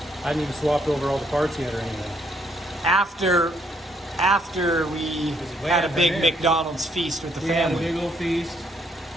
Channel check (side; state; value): both; normal; correlation 0.70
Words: I hadn't even swapped over all the parts yet or anything. After we way had a after big that. McDonald's feast with the We had a family. big old feast.